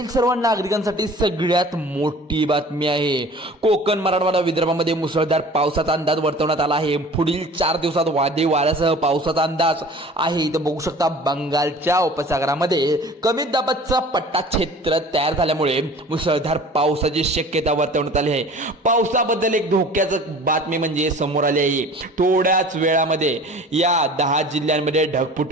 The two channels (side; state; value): both; normal; correlation 0.44